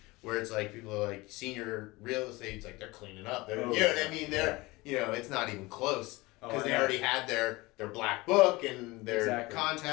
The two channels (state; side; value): quieter; right; 22.1 dB